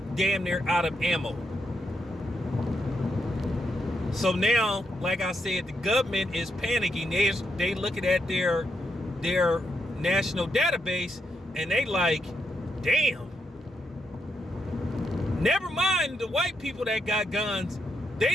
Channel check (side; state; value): both; normal; correlation 0.80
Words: damn near out of ammo. So now, like I said, the government is panicking. They looking at their national database, and they like, damn. Never mind the white people that got guns. They